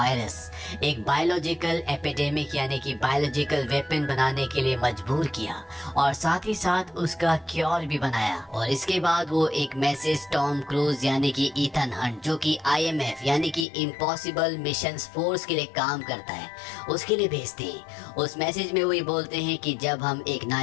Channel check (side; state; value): right; drops out; at 13.7 s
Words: एक बायोलॉजिकल एपिडेमिक यानी कि बायोलॉजिकल वेपन बनाने के लिए मजबूर किया और साथ ही साथ उसका क्योर भी बनाया। और इसके बाद वो एक मैसेज टॉम क्रूज यानी कि ईथन हंट जो कि IMF यानी कि इम्पॉसिबल मिशंस फोर्स के लिए काम करता है उसके लिए भेजते हैं। उस मैसेज में वो ये बोलते हैं कि जब हम एक